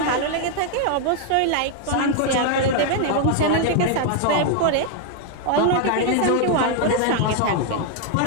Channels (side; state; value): both; different; correlation 0.00